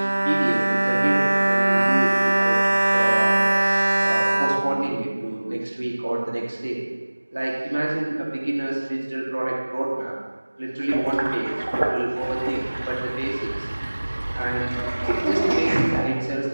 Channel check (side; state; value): both; inverted; correlation -1.00